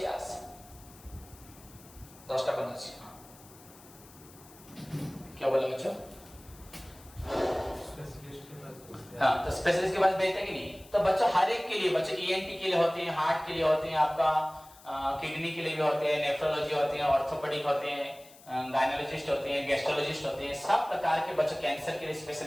ଆସ 10ଟା बंद ଅଛି। क्या बोला बच्चों? हाँ, तो स्पेशलिस्ट के पास भेजते कि नहीं? तो बच्चों हर एक के लिए, बच्चों ईएनटी के लिए होते हैं, हार्ट के लिए होते हैं, आपका किडनी के लिए भी होते हैं, नेफ्रोलॉजी होते हैं, ऑर्थोपेडिक होते हैं, गायनोलॉजिस्ट होते हैं, गैस्ट्रोलॉजिस्ट होते हैं, सब प्रकार के बच्चों कैंसर के लिए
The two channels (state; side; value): noise; left; hiss, 23 dB below the sound